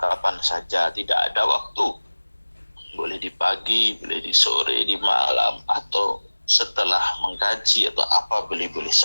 saja, tidak ada waktu. Boleh di pagi, boleh di sore, di malam, atau setelah mengkaji atau apa, boleh-boleh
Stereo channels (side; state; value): both; inverted; correlation -1.00